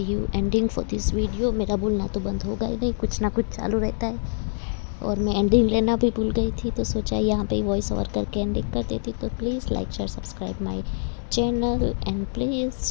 हूँ एंडिंग फॉर दिस वीडियो। मेरा बोलना तो बंद होगा ही नहीं, कुछ ना कुछ चालू रहता है, और मैं एंडिंग लेना भी भूल गई थी, तो सोचा यहाँ पे वॉइस ओवर करके एंडिंग कर देती। तो please like share subscribe my channel and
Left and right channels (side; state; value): right; silent; digital silence